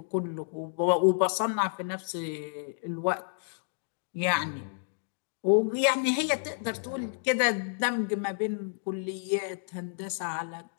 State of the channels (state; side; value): silent; right; digital silence